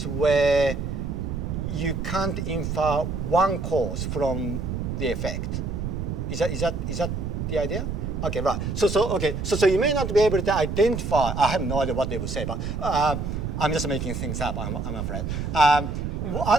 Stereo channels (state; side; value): noise; right; rumble, 3 dB below the sound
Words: where you can't infer one cause from the effect. Is that the idea? Okay, right. So you may not be able to identify. I have no idea what they will say, but I'm just making things up. I'm afraid.